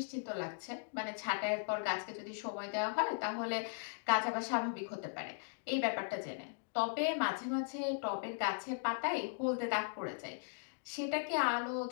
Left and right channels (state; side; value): silent; right; digital silence